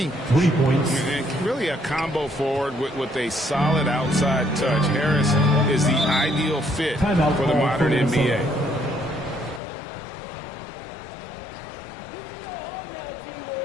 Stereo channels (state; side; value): drops out; right; at 9.6 s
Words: 3 points. And really a combo forward with a solid outside touch. Harris is the ideal fit Timeout for the call modern for NBA.